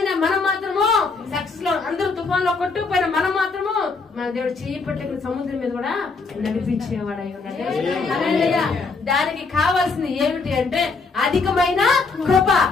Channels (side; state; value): right; quieter; 4.3 dB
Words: మనం మాత్రము సక్సెస్ లో, అందరూ తుఫాన్ లో కొట్టుకుపోయినా మనం మాత్రము మన దేవుడు చేయి పట్టుకుని సముద్రం మీద కూడా నడిపించేవాడు అయి ఉన్నాడు. దానికి కావాల్సింది ఏమిటి అంటే అధికమైన కృప.